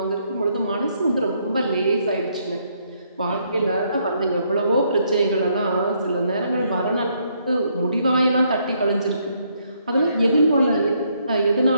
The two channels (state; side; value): inverted; both; correlation -0.72